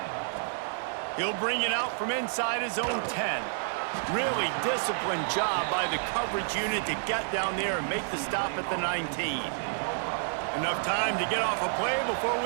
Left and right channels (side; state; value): left; silent; digital silence